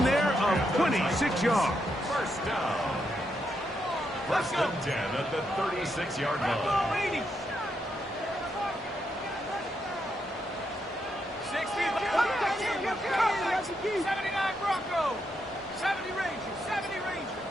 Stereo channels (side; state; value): both; normal; correlation 0.81